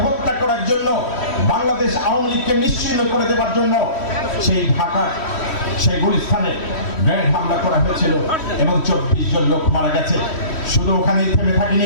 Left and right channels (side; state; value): right; late; 3.1 ms